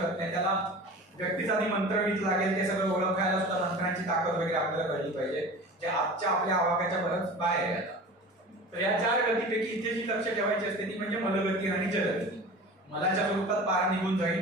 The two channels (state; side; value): normal; both; correlation 0.36